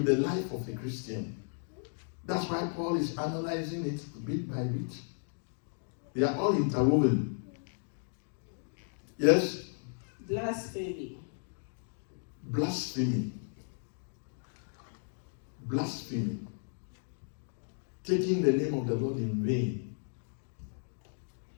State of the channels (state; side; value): silent; right; 55 dB below the other